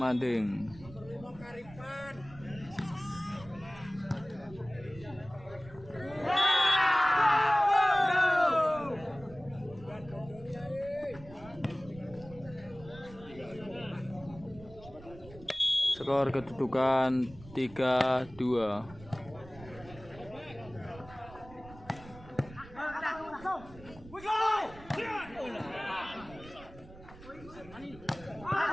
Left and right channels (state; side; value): noise; right; rumble, 19 dB below the sound